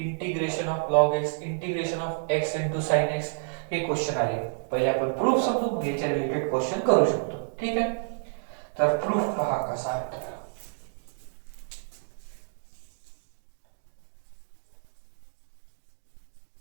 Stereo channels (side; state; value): left; silent; digital silence